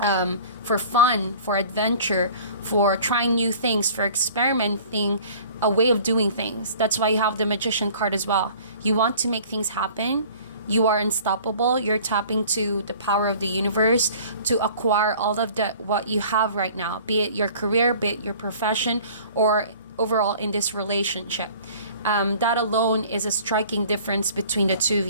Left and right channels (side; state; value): both; inverted; correlation -0.48